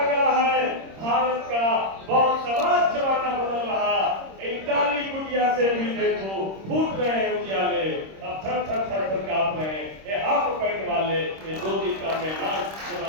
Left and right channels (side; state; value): left; late; 26 ms